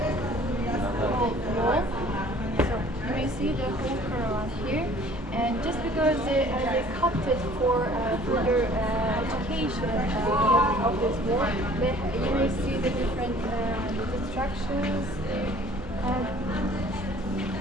wall. So you may see the whole caravan here, and just because they cut it for further education of this wall, you may see the different structures.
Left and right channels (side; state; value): both; normal; correlation 0.52